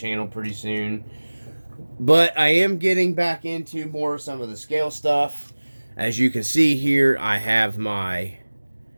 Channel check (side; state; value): both; inverted; correlation -1.00